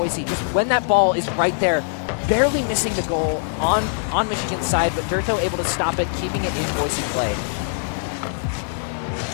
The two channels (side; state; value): right; silent; digital silence